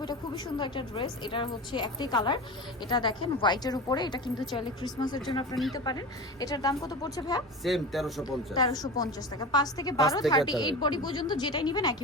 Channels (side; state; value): both; normal; correlation 0.29